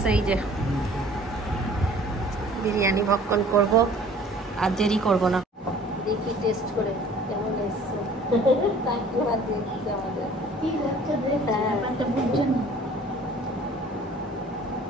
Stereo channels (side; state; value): both; normal; correlation 0.51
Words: এই যে বিরিয়ানি ভক্ষণ করব, আর দেরি করব না। দেখি টেস্ট করে কেমন এসছে।